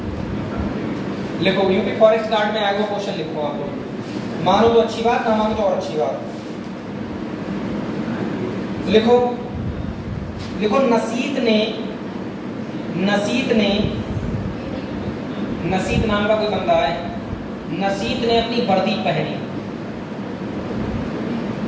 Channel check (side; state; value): both; identical; correlation 1.00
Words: लिखो, यूपी फॉरेस्ट गार्ड में आया वो क्वेश्चन लिखो आप लोग, मानो तो अच्छी बात, ना मानो तो और अच्छी बात। लिखो लिखो, नसीत नाम का कोई बंदा है, नसीत ने अपनी वर्दी पहनी,